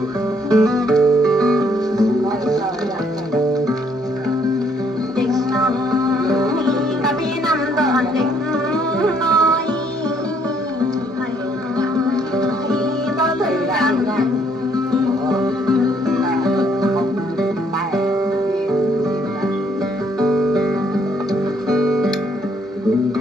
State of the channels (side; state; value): both; normal; correlation 0.67